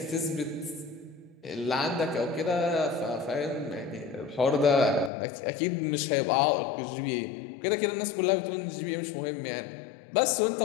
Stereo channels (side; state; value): right; drops out; at 5.1 s